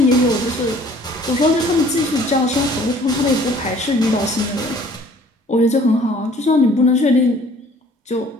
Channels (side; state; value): both; normal; correlation 0.54